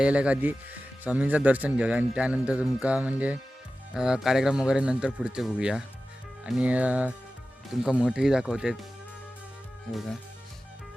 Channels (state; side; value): normal; both; correlation 0.95